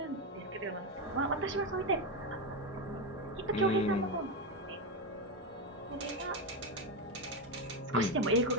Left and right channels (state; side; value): normal; both; correlation 0.11